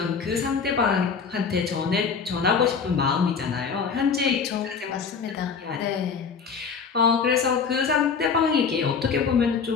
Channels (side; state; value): right; quieter; 5.8 dB